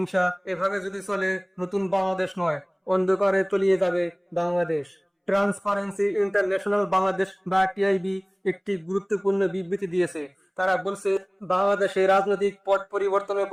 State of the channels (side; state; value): both; identical; correlation 1.00